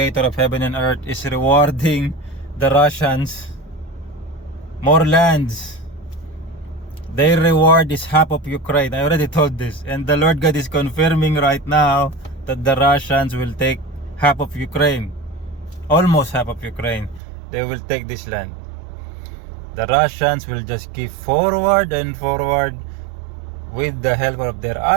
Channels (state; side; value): drops out; left; at 17.2 s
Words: of heaven and earth, is rewarding the Russians more lands. Their reward is half of Ukraine. I already told this. And the Lord God is confirming right now that the Russians will take half of Ukraine. Almost half of Ukraine. They will take this land. The Russians will just keep forward and forward with the help of their